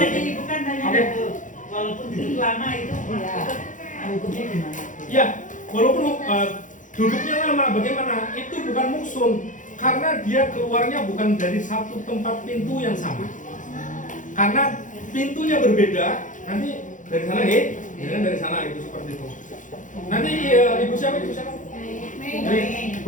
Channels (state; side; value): late; right; 0.37 ms